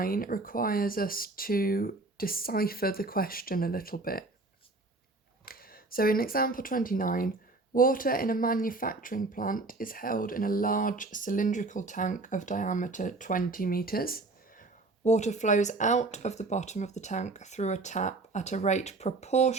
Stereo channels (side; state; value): left; quieter; 3.3 dB